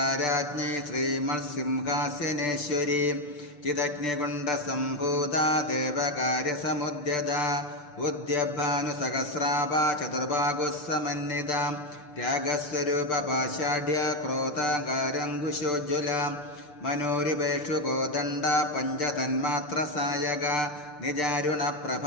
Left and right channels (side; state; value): right; late; 6.8 ms